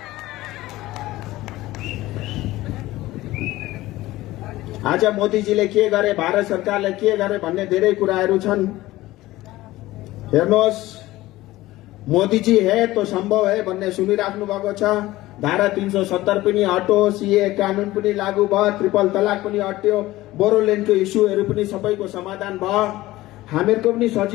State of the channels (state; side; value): quieter; right; 17.3 dB